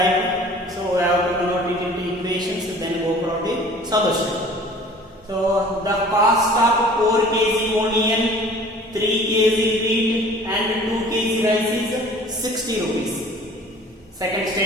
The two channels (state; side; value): normal; both; correlation 0.48